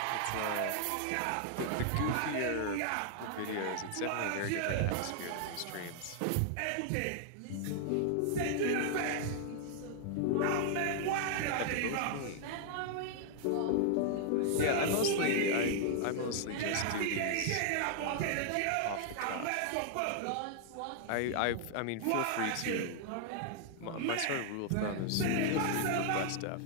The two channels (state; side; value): different; both; correlation 0.00